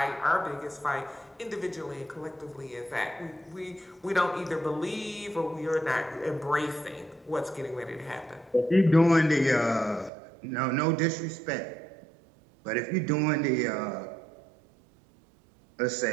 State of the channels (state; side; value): drops out; left; at 10.1 s